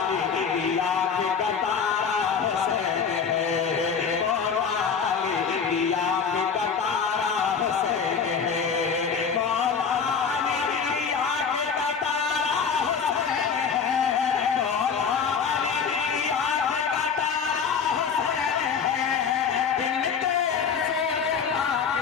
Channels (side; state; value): right; quieter; 6.3 dB